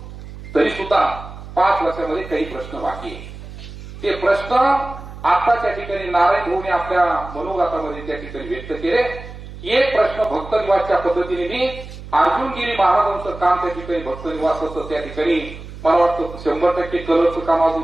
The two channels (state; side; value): noise; right; hum, 13 dB below the sound